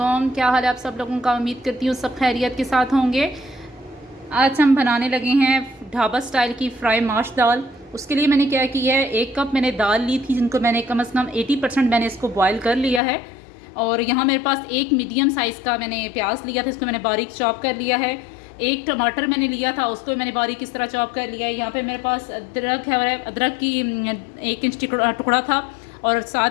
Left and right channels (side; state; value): right; drops out; at 13.0 s